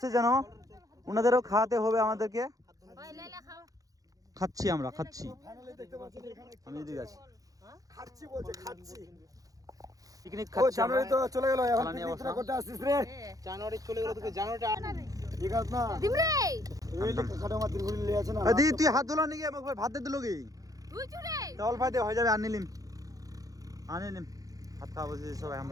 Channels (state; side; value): late; left; 0.17 ms